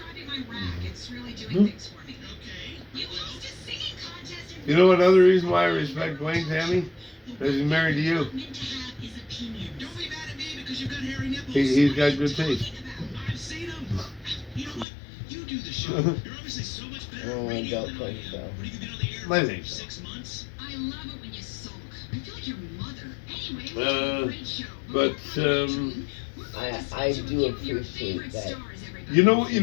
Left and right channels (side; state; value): right; drops out; at 14.9 s